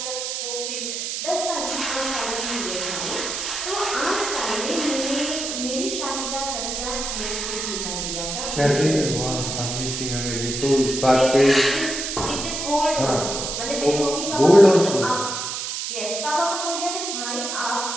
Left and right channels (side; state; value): right; noise; hiss, 4 dB below the sound